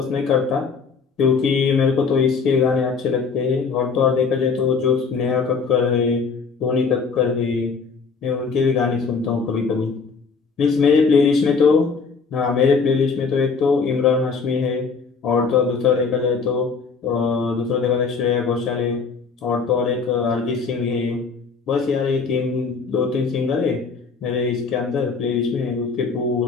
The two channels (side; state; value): right; quieter; 5.0 dB